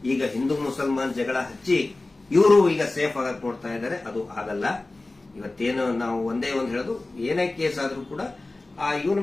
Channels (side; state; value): right; quieter; 3.1 dB